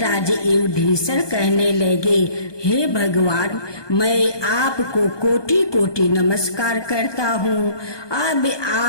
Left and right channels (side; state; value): right; late; 1.2 ms